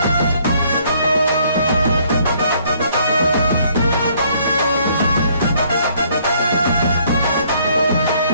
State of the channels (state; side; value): inverted; both; correlation -0.64